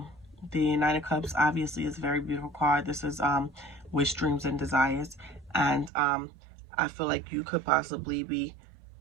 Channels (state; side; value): drops out; left; at 5.9 s